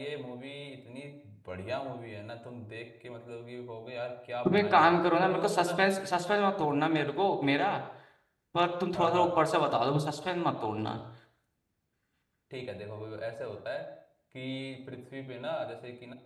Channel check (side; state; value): both; identical; correlation 1.00